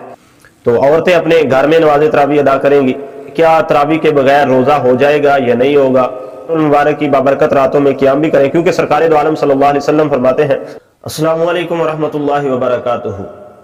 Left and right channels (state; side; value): identical; both; correlation 1.00